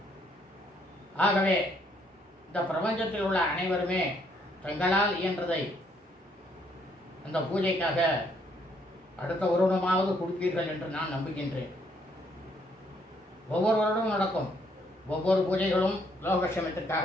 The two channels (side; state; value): both; normal; correlation 0.69